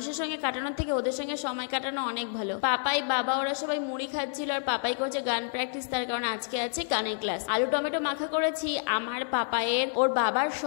সঙ্গে কাটানোর থেকে ওদের সঙ্গে সময় কাটানো অনেক ভালো। পাপাই বাবা ওরা সবাই মুড়ি খাচ্ছিল, আর পাপাই করছে গান প্র্যাকটিস, তার কারণ আজকে আছে গানের ক্লাস। আলু টমেটো মাখা করেছি, আমার পাপায়ের ওর বাবার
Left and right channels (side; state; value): right; silent; 59 dB below the other